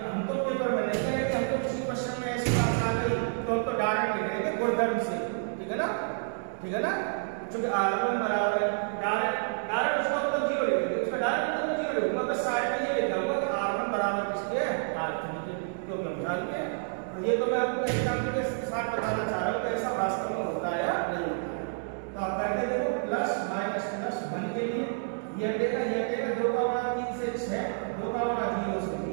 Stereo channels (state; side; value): silent; left; digital silence